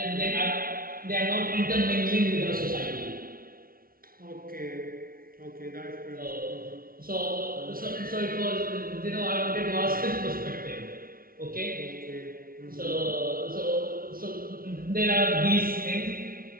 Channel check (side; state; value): left; late; 0.43 ms